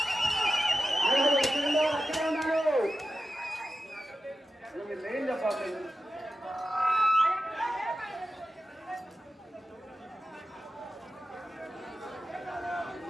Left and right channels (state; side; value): normal; both; correlation 0.92